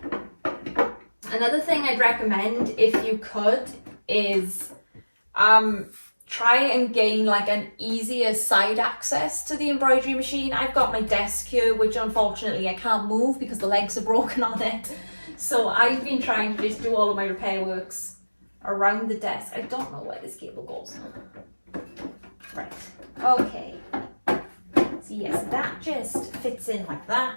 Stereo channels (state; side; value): inverted; both; correlation -1.00